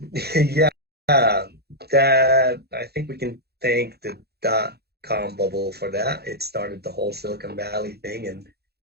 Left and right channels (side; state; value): left; late; 0.47 ms